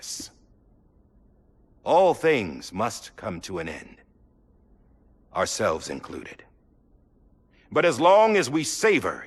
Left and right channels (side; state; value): both; identical; correlation 1.00